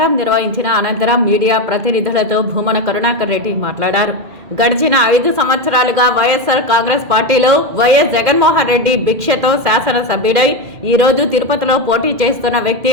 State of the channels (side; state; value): left; late; 2.4 ms